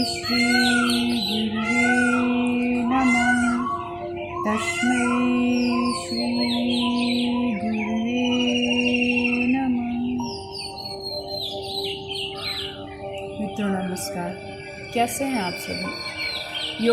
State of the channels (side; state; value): both; identical; correlation 1.00